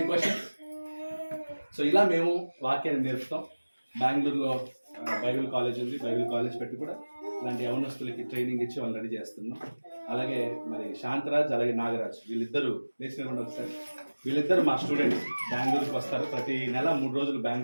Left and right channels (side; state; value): both; inverted; correlation -1.00